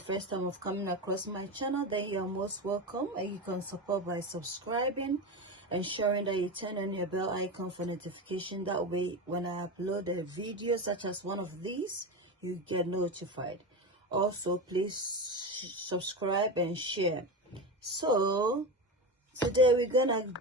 time of coming across my channel, then you're most welcome, and you can support by subscribing, ensuring that you turn on your bell icon for notification. That way, when I upload a video such as one of these, you get notified. Also, please subscribe and share. So today we're gonna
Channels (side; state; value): both; normal; correlation 0.21